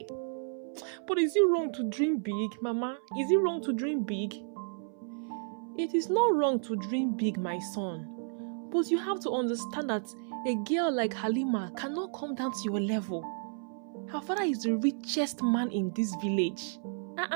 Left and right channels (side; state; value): left; silent; 56 dB below the other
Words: But is it wrong to dream big, Mama? Is it wrong to dream big? It is not wrong to dream big, my son. But you have to understand that a girl like Halima cannot come down to your level. Her father is the richest man in this village.